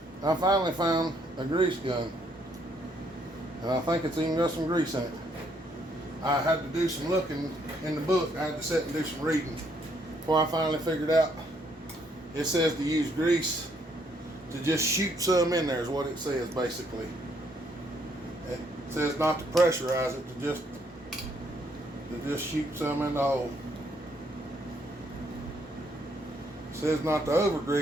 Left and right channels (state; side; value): normal; both; correlation 0.70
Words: I finally found a grease gun. And I think it's even got some grease in it. I had to do some looking in the book. I had to sit and do some reading before I finally figured out. It says to use grease to just shoot some in there is what it says basically. It says not to pressurize it, to just shoot some in the hole. It says not to over